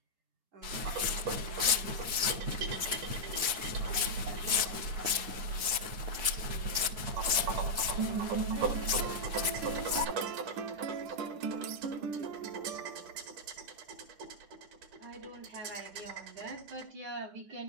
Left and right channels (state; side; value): late; left; 9.4 ms